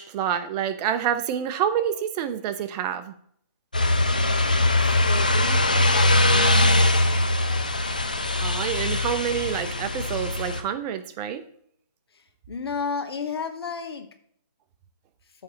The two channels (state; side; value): inverted; both; correlation -0.54